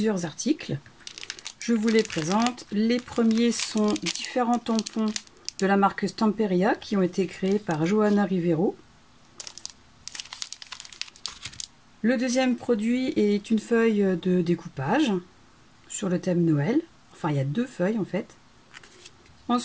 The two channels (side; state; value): both; identical; correlation 1.00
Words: articles. Je vous les présente. Les premiers sont différents tampons de la marque Stamperia qui ont été créés par Johanna Rivero. Le deuxième produit est une feuille de découpage sur le thème Noël. Enfin, il y a deux feuilles en fait.